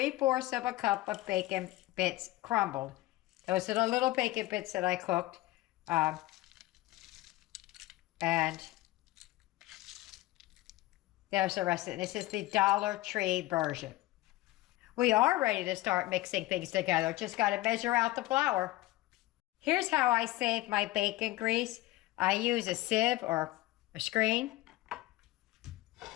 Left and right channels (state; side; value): quieter; right; 17.9 dB